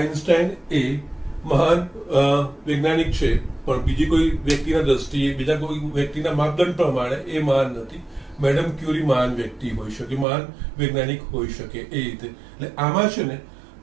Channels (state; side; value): drops out; left; at 10.2 s